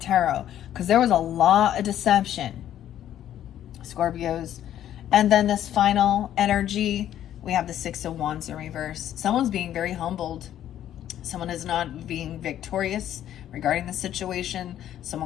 because there was a lot of deception, Scorpios. And then this final energy, we have the 6 of Wands in reverse. Someone's being very humbled. Someone is not being victorious regarding the situation.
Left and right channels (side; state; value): right; quieter; 11.3 dB